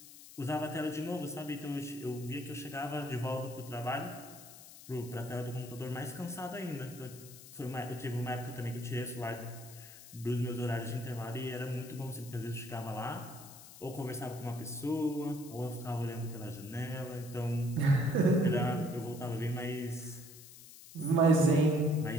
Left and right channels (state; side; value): noise; left; hiss, 17 dB below the sound